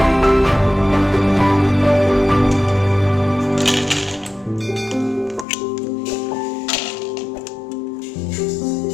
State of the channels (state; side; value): drops out; right; at 5.5 s